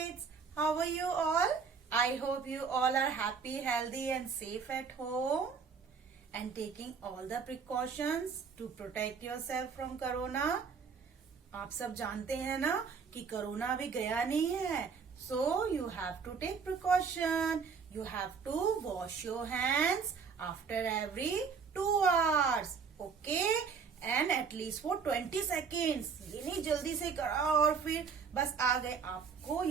How are you all? I hope you all are happy, healthy, and safe at home and taking all the precautions to protect yourself from corona. आप सब जानते हैं ना कि corona अभी गया नहीं है, so you have to take precaution. You have to wash your hands after every 2 hours. Okay? And at least for 20 seconds. ये नहीं जल्दी से करा और फिर बस आ गए. आपको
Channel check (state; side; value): quieter; left; 5.7 dB